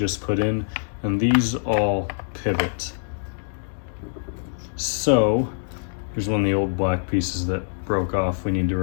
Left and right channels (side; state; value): right; silent; digital silence